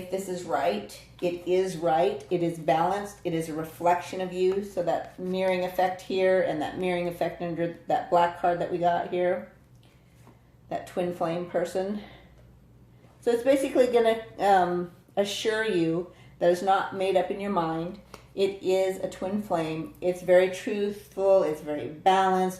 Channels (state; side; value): identical; both; correlation 1.00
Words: this is right. It is right. It is balanced. It is a reflection of you. So that mirroring effect here and that mirroring effect under that black card that we got here, that twin flame person. So it's basically going to assure you that it's not made up in your mind. It is a twin flame. It's very truthful. It's very